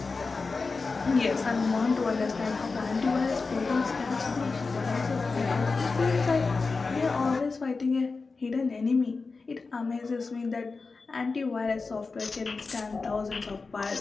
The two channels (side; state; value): right; quieter; 4.2 dB